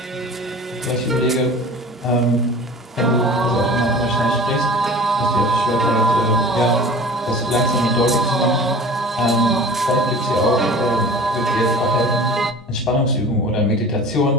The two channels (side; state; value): both; normal; correlation 0.41